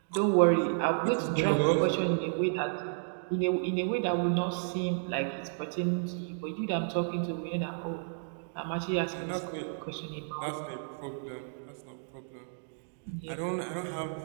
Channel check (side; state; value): left; silent; digital silence